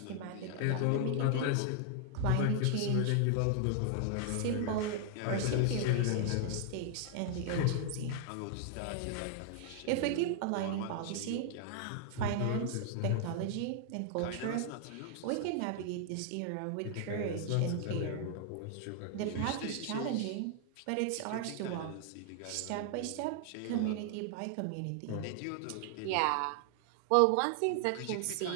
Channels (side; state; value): both; different; correlation 0.00